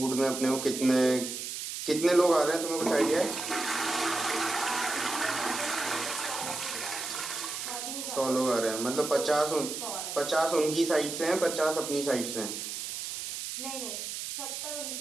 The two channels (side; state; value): right; noise; hiss, 6 dB below the sound